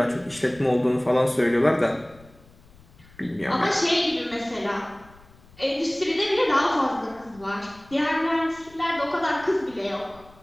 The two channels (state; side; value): noise; left; rumble, 25 dB below the sound